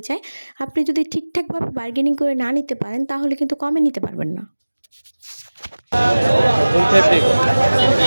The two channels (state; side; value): inverted; both; correlation -1.00